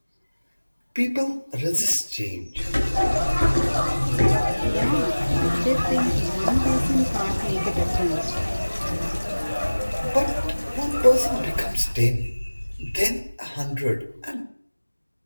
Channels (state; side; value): inverted; both; correlation -1.00